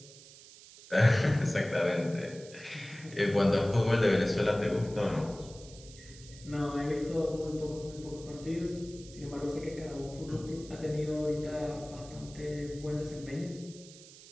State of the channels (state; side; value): noise; right; hiss, 19 dB below the sound